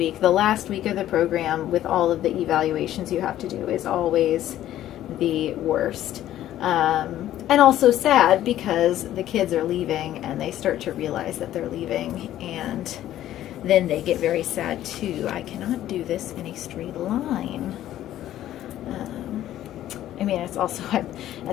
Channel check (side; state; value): right; quieter; 12.8 dB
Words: The last week of the program with all of the evaluations you have to do is always the worst. And also sad because the kids are leaving and they start to realize that they're leaving, and then they get very sad too. I cannot do this in a straight line. I mean, it's also